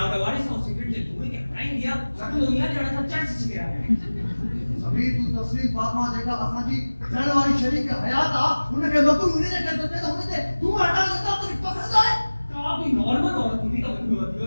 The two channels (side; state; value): both; inverted; correlation -1.00